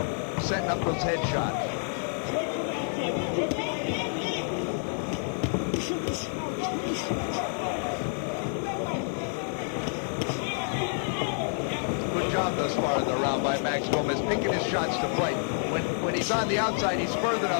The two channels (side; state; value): right; silent; 59 dB below the other